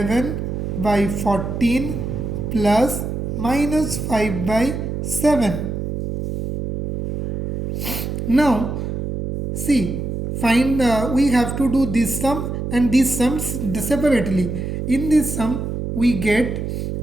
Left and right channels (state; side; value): noise; right; hum, 4 dB below the sound